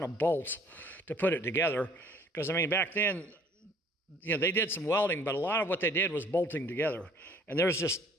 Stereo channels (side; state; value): both; normal; correlation 0.56